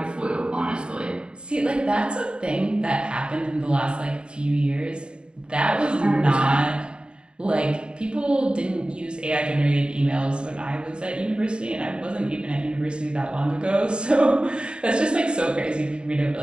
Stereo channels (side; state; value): left; late; 0.052 ms